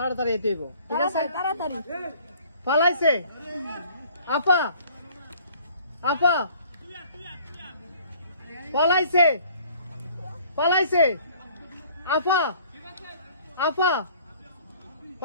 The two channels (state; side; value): inverted; both; correlation -0.54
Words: এতে ঠিক আছে তাড়াতাড়ি পালাইছে আপা আপা পালাইছে পালাইছে আপা আপা